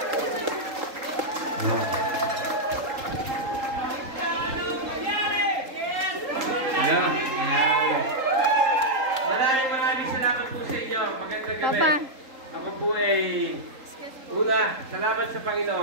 Maraming salamat po sa inyo. Magandang gabi. Ako po ay una, salamat sa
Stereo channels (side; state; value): left; late; 3.8 ms